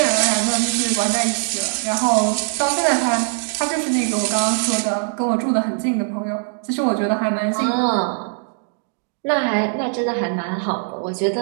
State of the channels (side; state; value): left; silent; 65 dB below the other